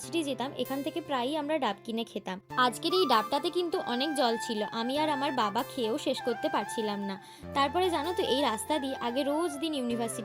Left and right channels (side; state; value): both; identical; correlation 1.00